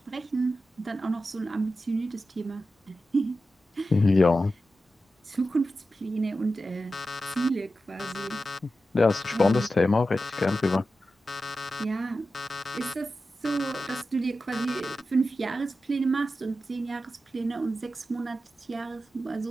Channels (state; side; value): normal; both; correlation 0.92